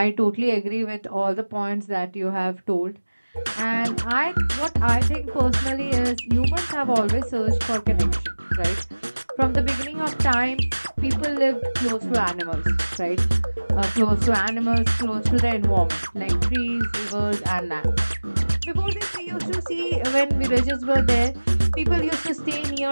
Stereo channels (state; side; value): inverted; both; correlation -1.00